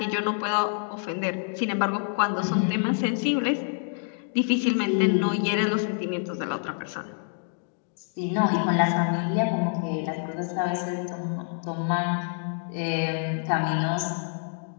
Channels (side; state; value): right; silent; 60 dB below the other